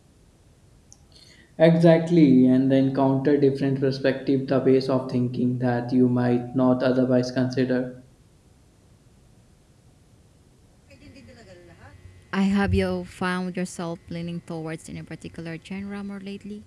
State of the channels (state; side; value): identical; both; correlation 1.00